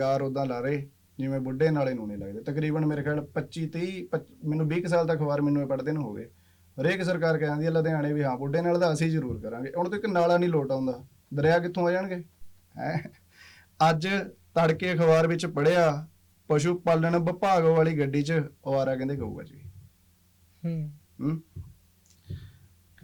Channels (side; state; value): both; identical; correlation 1.00